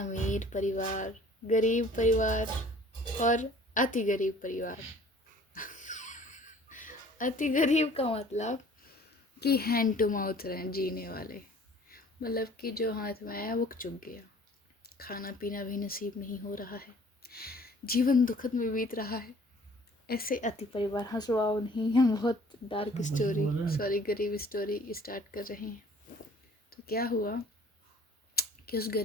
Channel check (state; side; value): normal; both; correlation 0.52